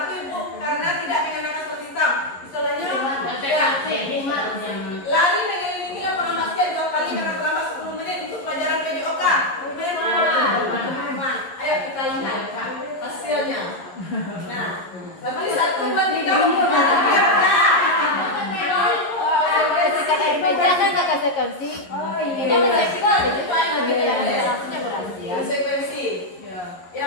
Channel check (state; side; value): late; right; 11 ms